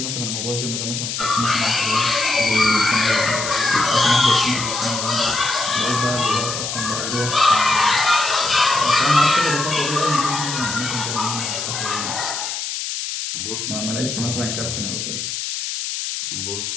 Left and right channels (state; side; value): noise; left; hiss, 4 dB below the sound